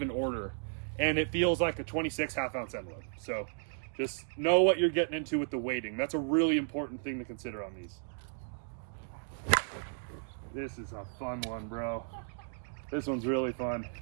order, and it feels like a 26 half-ounce end load. So just know what you're getting into with the weighting. That's a really important thing to consider on these. This is a fun one, bro. This one's really fun.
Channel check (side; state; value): left; silent; digital silence